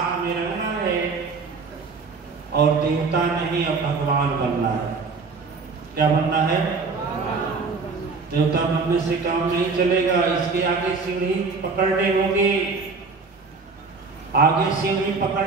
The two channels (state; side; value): quieter; left; 4.5 dB